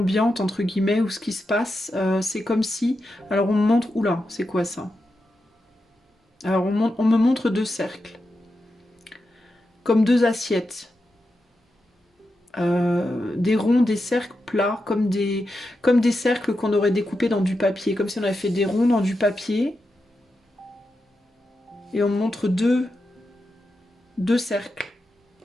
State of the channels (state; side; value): normal; both; correlation 0.88